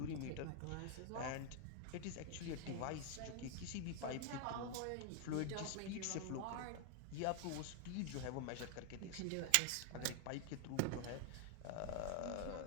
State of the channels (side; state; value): both; different; correlation 0.00